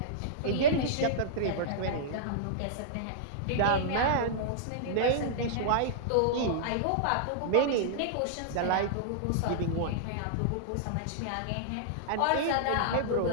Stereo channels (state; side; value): different; both; correlation -0.02